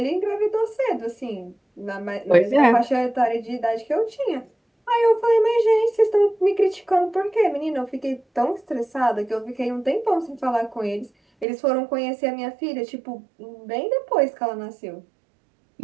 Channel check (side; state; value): left; drops out; at 11.5 s